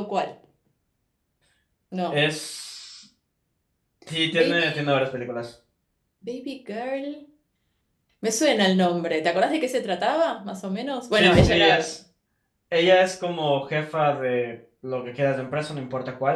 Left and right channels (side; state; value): both; identical; correlation 1.00